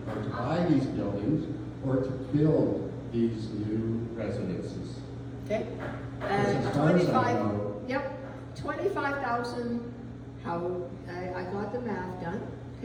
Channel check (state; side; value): identical; both; correlation 1.00